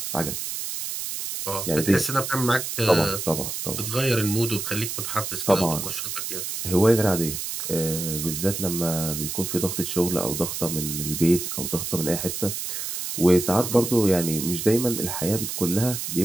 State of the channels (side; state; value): right; noise; hiss, 5 dB below the sound